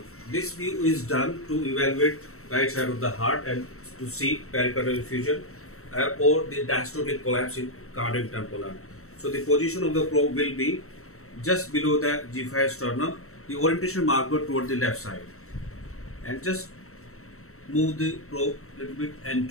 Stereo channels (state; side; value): late; right; 0.63 ms